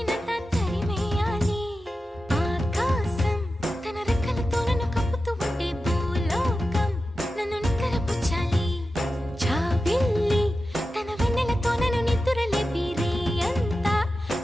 తరిమేయాలి. ఆకాశం తన రెక్కలతో నన్ను కప్పుతూ ఉంటే భూలోకం నన్ను నిద్రపుచ్చాలి. జాబిల్లి తన వెన్నెలతో నన్ను నిద్రలేపి రే అంతా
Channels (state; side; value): normal; both; correlation 0.92